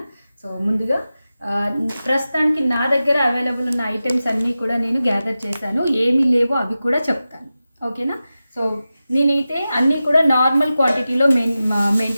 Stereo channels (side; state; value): both; inverted; correlation -0.94